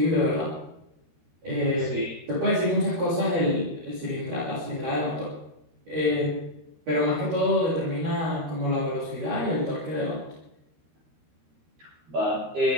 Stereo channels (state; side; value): late; left; 13 ms